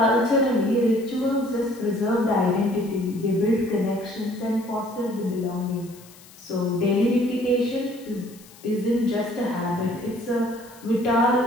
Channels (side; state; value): left; noise; hiss, 23 dB below the sound